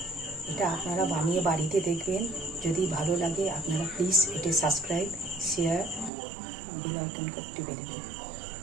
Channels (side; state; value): left; drops out; at 6.1 s